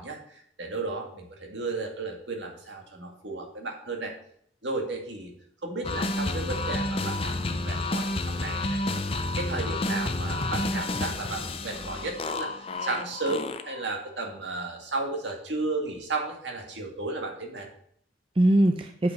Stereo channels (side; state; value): both; normal; correlation 0.46